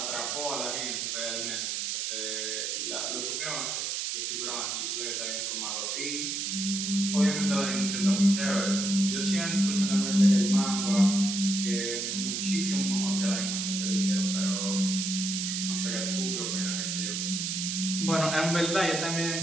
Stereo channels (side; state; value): right; noise; hiss, 1 dB below the sound